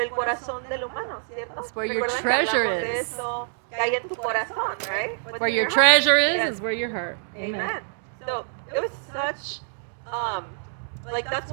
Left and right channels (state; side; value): silent; left; digital silence